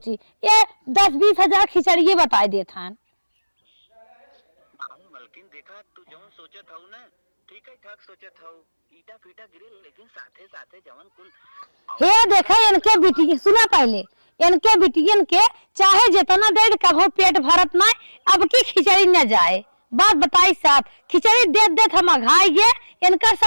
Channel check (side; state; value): both; inverted; correlation -1.00